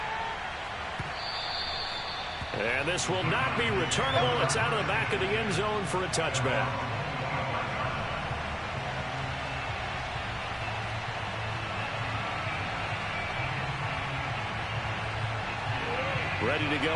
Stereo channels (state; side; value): identical; both; correlation 1.00